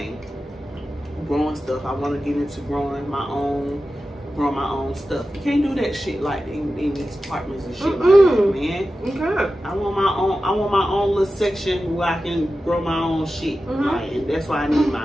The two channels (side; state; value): both; normal; correlation 0.93